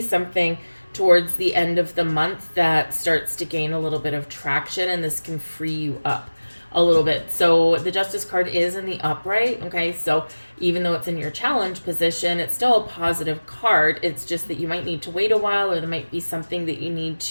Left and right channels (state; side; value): inverted; both; correlation -1.00